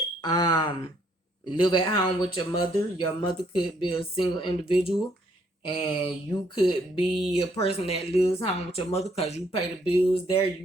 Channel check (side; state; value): both; normal; correlation 0.68